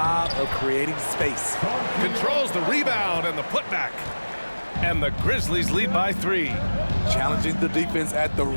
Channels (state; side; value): inverted; both; correlation -1.00